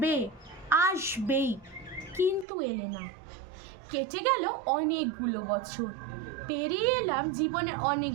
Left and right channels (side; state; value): left; drops out; at 2.5 s